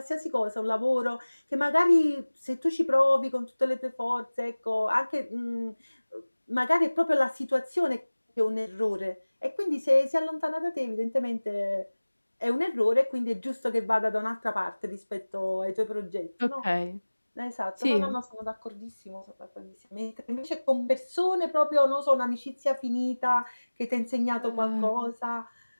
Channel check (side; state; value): both; inverted; correlation -1.00